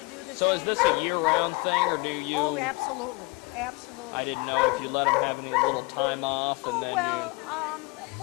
do the same. So is this a year-round thing, or do you? Oh, absolutely, absolutely. I didn't know if you let him have any little time off, and then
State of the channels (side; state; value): right; quieter; 27.5 dB